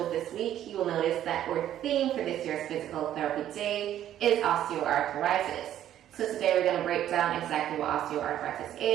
this week, you will notice that our theme for this year's Physical Therapy Day is osteoarthritis. So today we're going to break down exactly what osteoarthritis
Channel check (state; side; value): quieter; left; 11.5 dB